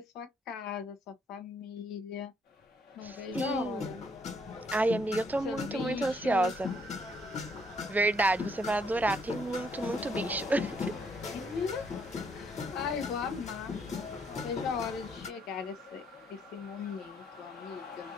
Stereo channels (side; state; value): both; normal; correlation 0.69